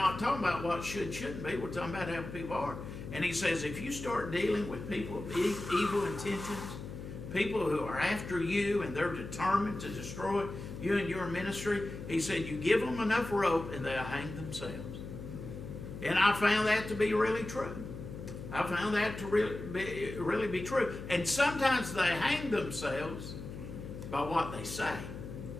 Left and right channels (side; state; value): left; noise; hum, 10 dB below the sound